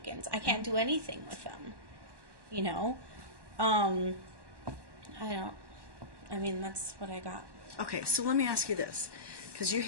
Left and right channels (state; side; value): late; left; 1.1 ms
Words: I can't do anything with them. You know, I mean, that's what I got. Okay, so let me ask you this, because you